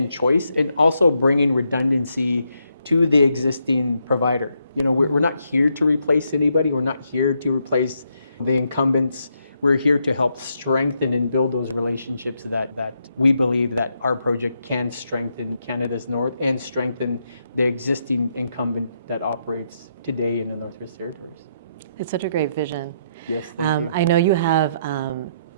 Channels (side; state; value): both; inverted; correlation -0.78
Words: choice, and also bringing redundancy to the existing provider. We're not here to replace anybody. We're not here to replace the incumbents. We're here to help strengthen and build those relationships that we believe that our project can strengthen Canada's North and strengthen the existing incumbent that operates today in the Northwest Territories. It's such a great vision. Yes, thank you. I know you have